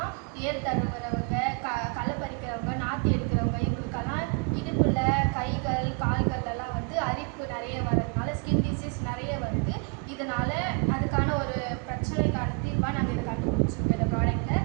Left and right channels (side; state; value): left; quieter; 37.3 dB